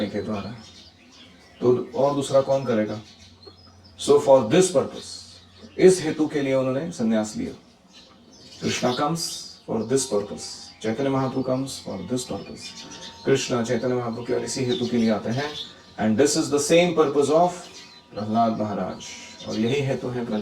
के द्वारा, तो और दूसरा कौन करेगा? सो फॉर दिस पर्पस, इस हेतु के लिए उन्होंने संन्यास लिया। Krishna comes for this purpose, Chaitanya Mahaprabhu comes for this purpose. Krishna Chaitanya Mahaprabhu केवल इसी हेतु के लिए आते हैं। And this is the same purpose of Prahlad Maharaj, और यही हेतु है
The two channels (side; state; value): both; identical; correlation 1.00